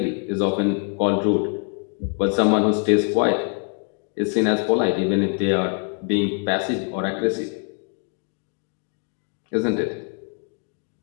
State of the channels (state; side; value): quieter; right; 38.6 dB